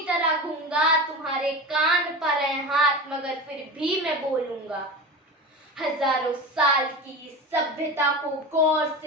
तरह गूंगा, तुम्हारे कान पर है हाथ मगर फिर भी मैं बोलूंगा। हजारों साल की इस सभ्यता को गौर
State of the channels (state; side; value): normal; both; correlation 0.28